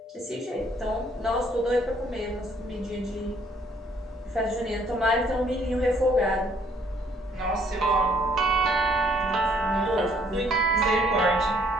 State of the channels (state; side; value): normal; both; correlation 0.64